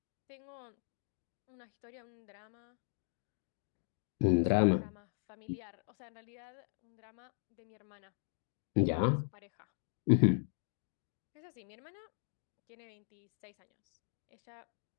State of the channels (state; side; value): silent; right; digital silence